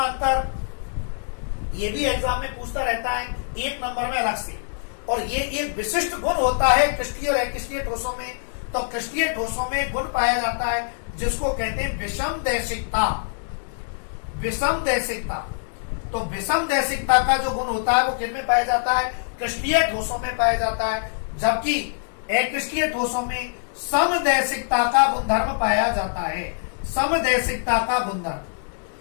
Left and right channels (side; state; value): right; silent; digital silence